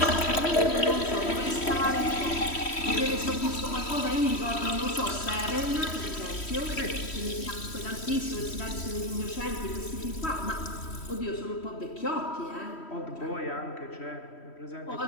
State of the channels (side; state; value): right; late; 3.1 ms